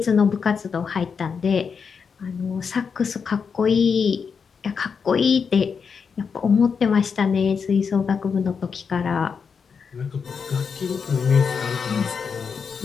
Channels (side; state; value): right; quieter; 6.0 dB